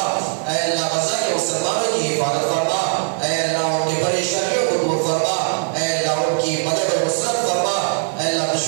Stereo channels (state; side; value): silent; left; digital silence